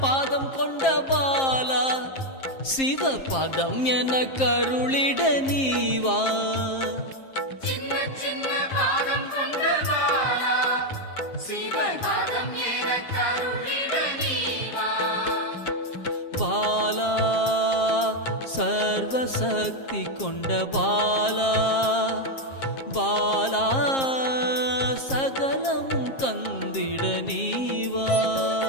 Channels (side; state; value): right; late; 7.5 ms